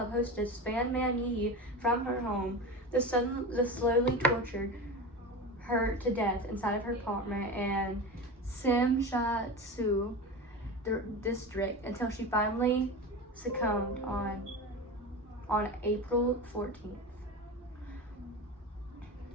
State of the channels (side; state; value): both; normal; correlation 0.26